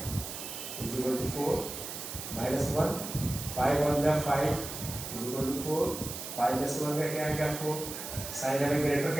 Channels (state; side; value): noise; right; hiss, 8 dB below the sound